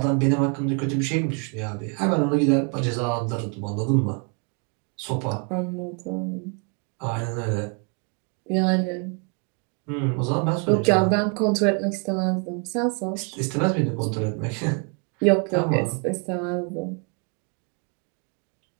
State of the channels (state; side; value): quieter; left; 36.2 dB